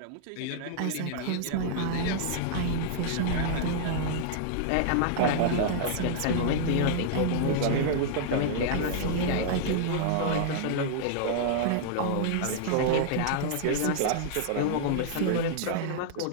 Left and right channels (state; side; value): different; both; correlation -0.01